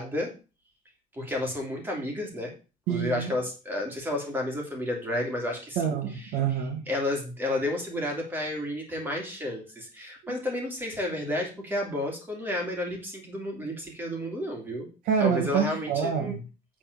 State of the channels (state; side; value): normal; both; correlation 0.39